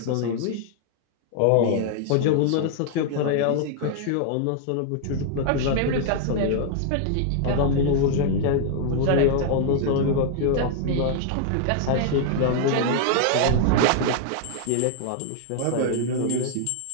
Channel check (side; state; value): both; different; correlation 0.00